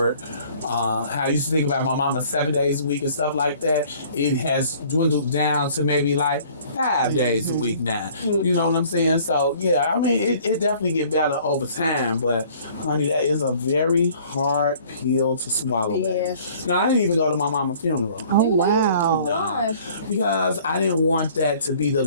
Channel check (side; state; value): both; inverted; correlation -0.54